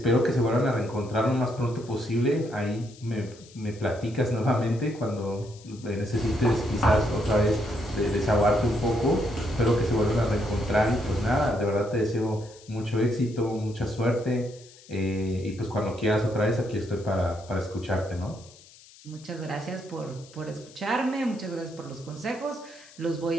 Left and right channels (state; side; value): noise; left; hiss, 23 dB below the sound